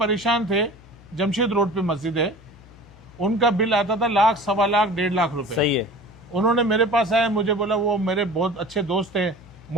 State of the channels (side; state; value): left; noise; hum, 23 dB below the sound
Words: थे, जमशेद रोड पे मस्जिद है, उनका बिल आता था 1,00,000, 1,15,00,000, 1,50,000 रुपए। सही है। उन्होंने मेरे पास आया, मुझे बोला, वो मेरे बहुत अच्छे दोस्त हैं